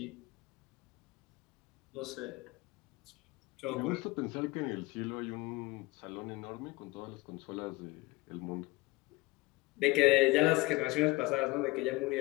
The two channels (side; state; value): right; quieter; 22.0 dB